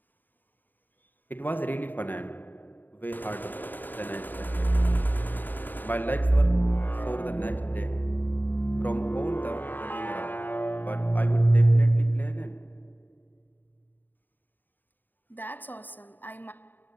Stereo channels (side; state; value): right; late; 0.089 ms